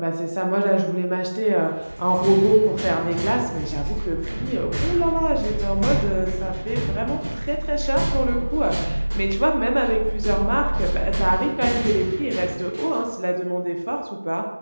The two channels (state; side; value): inverted; both; correlation -1.00